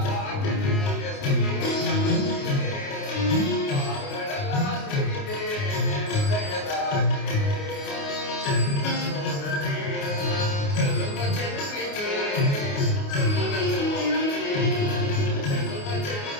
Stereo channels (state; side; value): late; right; 29 ms